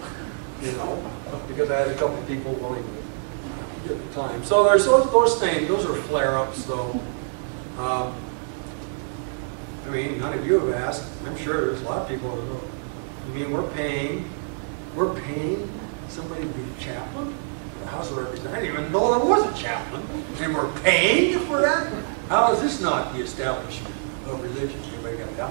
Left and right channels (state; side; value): silent; left; digital silence